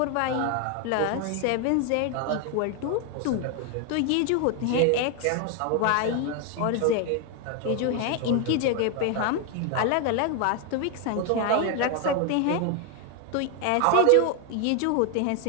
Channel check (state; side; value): different; both; correlation 0.01